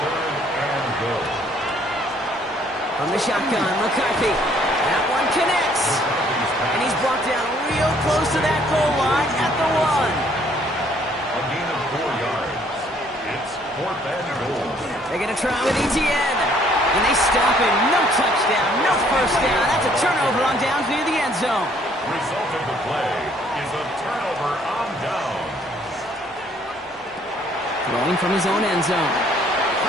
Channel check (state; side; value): normal; both; correlation 0.63